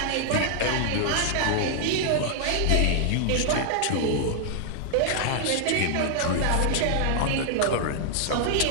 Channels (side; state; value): both; different; correlation 0.00